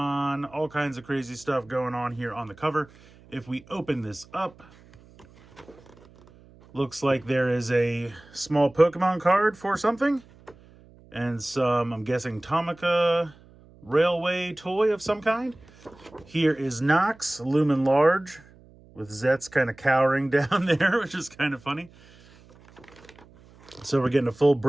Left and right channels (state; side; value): noise; right; hum, 25 dB below the sound